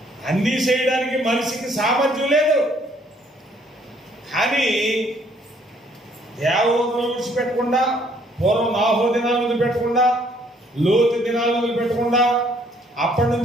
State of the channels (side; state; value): both; normal; correlation 0.64